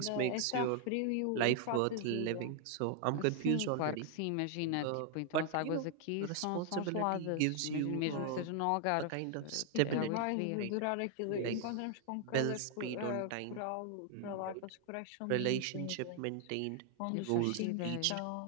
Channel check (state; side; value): different; both; correlation 0.00